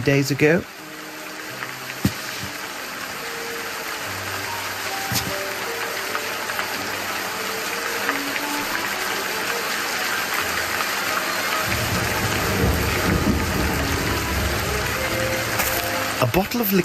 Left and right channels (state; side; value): identical; both; correlation 1.00